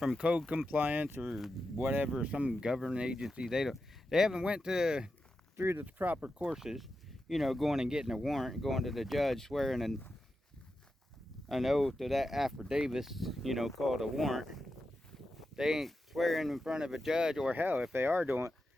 code compliance or whatever, some government agency. They haven't went through the proper courses, you know, going and getting a warrant, going to the judge, swearing an oath to that affidavit, you know, called a warrant. They ain't swearing in front of a judge, or hell, if they are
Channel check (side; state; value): both; normal; correlation 0.89